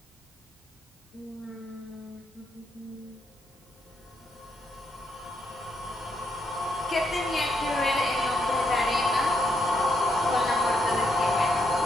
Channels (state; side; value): normal; both; correlation 0.78